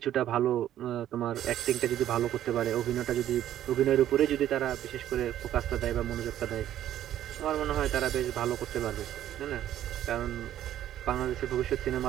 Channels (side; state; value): left; quieter; 11.9 dB